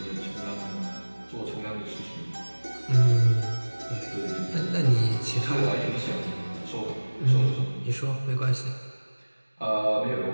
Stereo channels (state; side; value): inverted; both; correlation -1.00